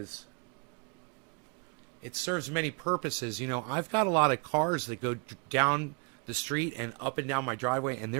It serves many purposes. You know, I've got a lot of cars that go down the street and up and down my driveway, and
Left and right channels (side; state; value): left; quieter; 33.9 dB